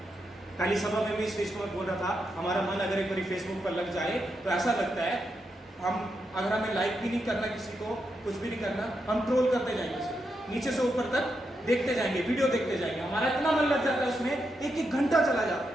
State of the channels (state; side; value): normal; both; correlation 0.84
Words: पहली सभा में भी इस चीज को मैं बोल रहा था, हमारा मन अगर एक बार फेसबुक पर लग जाए तो ऐसा लगता है हम, अगर हमें लाइक भी नहीं करना किसी को, कुछ भी नहीं करना, हम ट्रोल करते जाएंगे, नीचे से ऊपर तक देखते जाएंगे, वीडियो देखते जाएंगे, हमारा इतना मन लग जाता है उसमें, एक घंटा चला जाता